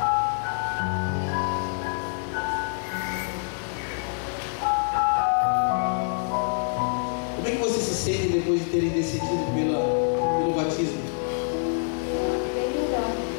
depois de terem decidido pelo batismo? Bem melhor.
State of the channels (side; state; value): right; silent; digital silence